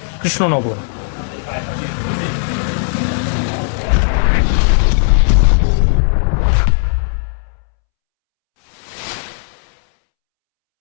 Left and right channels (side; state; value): right; silent; 70 dB below the other